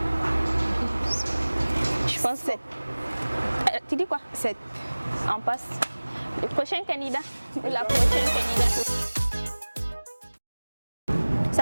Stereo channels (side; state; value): both; inverted; correlation -1.00